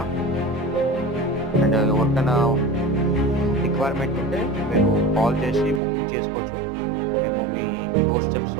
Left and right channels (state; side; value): drops out; left; at 5.8 s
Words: అండ్ ఎవరికైనా రిక్వైర్మెంట్ ఉంటే మీరు కాల్ చేసి బుకింగ్ చేసుకోవచ్చు. మేము మీ డోర్ స్టెప్స్